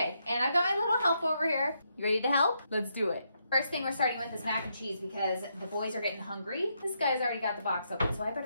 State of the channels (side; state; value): both; inverted; correlation -0.79